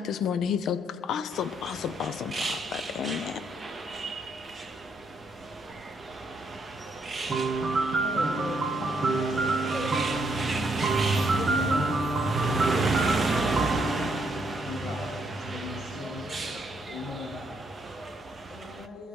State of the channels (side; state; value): both; normal; correlation 0.74